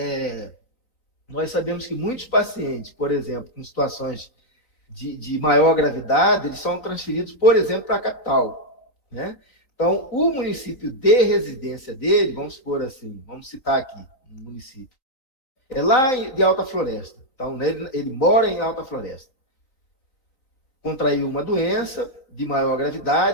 nós sabemos que muitos pacientes, por exemplo, com situações de maior gravidade, eles são transferidos, por exemplo, para a capital, né? Então, o município de residência dele, vamos supor assim, vamos citar aqui um município, é lá de Alta Floresta. Então, ele mora em Alta Floresta. Contraiu uma doença de maior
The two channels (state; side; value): late; right; 3.9 ms